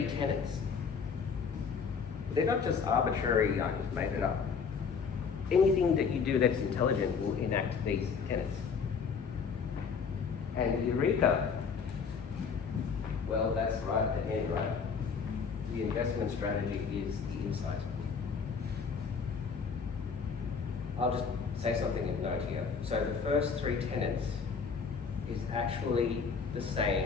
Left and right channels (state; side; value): quieter; right; 5.8 dB